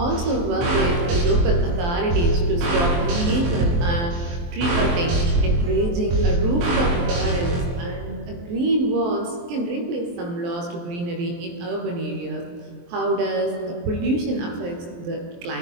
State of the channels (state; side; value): late; left; 23 ms